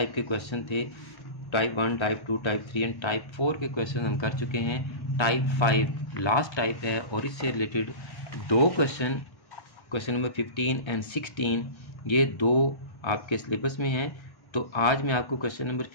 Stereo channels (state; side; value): late; right; 1.3 ms